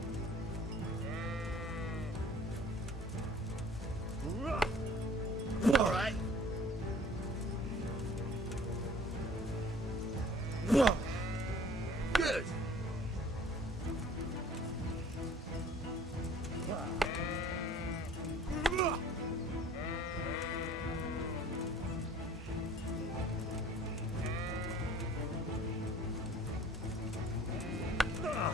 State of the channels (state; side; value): normal; both; correlation 0.51